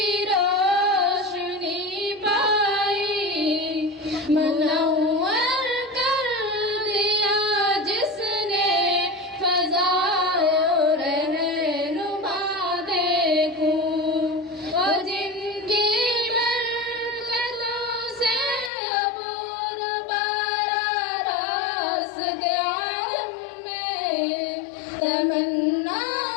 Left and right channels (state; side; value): drops out; right; at 18.7 s